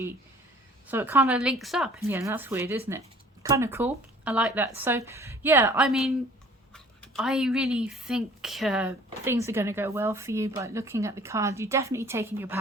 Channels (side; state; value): both; normal; correlation 0.51